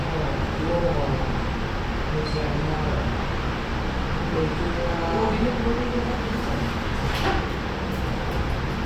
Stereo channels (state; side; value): identical; both; correlation 1.00